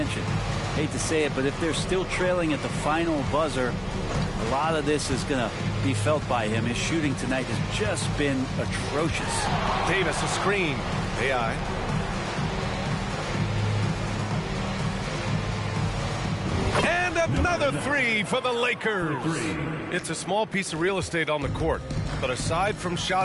Hate to say it, but if they're still trailing at the final buzzer, a lot of this is going to be felt by him. His shooting tonight has just been atrocious. Davis, a screen. AI. And another 3 for the Lakers. It's a small piece of real estate on the court, but aside from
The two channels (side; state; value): both; identical; correlation 1.00